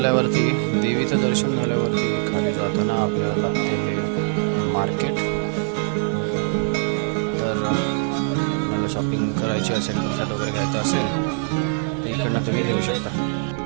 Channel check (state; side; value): silent; left; digital silence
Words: देवीचं दर्शन झाल्यावरती खाली जाताना आपल्याला लागते हे मार्केट. तर मला शॉपिंग करायची असेल, प्रसाद वगैरे घ्यायचा असेल, इकडनं तुम्ही देऊ शकता.